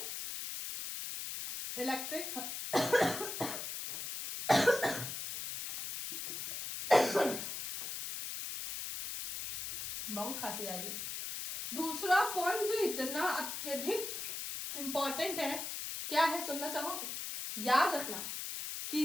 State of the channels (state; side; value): noise; left; hiss, 5 dB below the sound